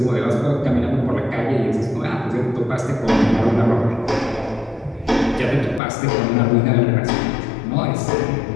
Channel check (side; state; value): right; drops out; at 5.8 s